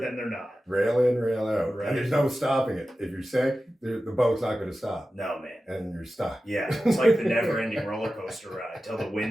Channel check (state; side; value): normal; both; correlation 0.94